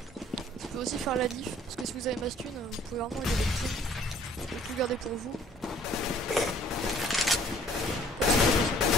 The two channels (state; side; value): normal; both; correlation 0.57